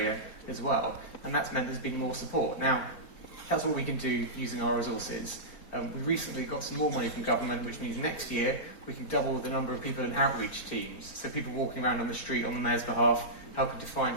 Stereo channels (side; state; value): right; late; 4.5 ms